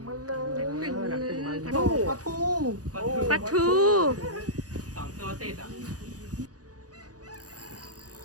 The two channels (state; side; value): late; left; 0.67 ms